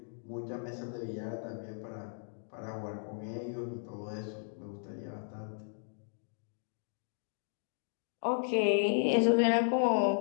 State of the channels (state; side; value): silent; right; digital silence